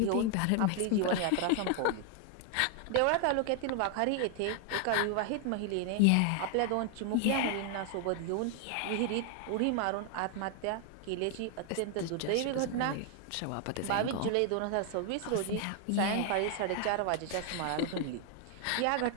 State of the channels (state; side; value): different; both; correlation 0.00